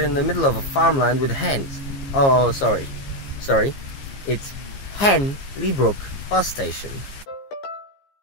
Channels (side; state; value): right; late; 15 ms